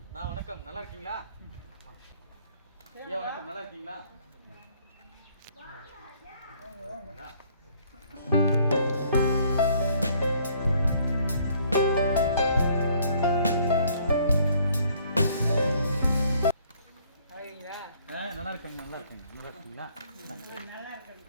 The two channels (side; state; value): both; inverted; correlation -0.62